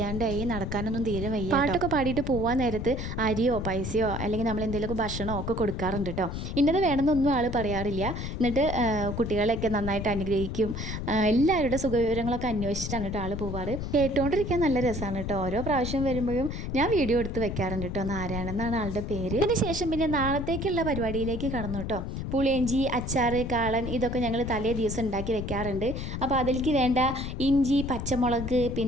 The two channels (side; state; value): left; noise; rumble, 5 dB below the sound